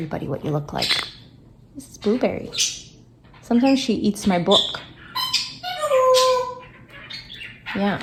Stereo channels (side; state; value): both; identical; correlation 1.00